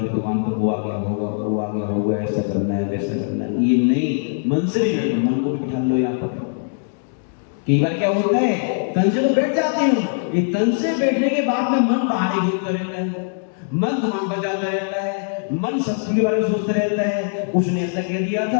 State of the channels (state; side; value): silent; right; 63 dB below the other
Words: दुकान पर वो आ गया होगा, वो आ गया होगा, ऐसा करना है वैसा करना है, ये नहीं। मन से भी बैठो, मन को भी बिठा लो यहाँ पर। कई बार क्या होता है, तन से तो बैठ जाते हो, ये तन से बैठने के बाद में मन बाहर ही घूमता रहता है, मन दुकान पर जाता रहता है, मन शत्रु के बारे में सोचता रहता है, उसने ऐसा कह दिया था,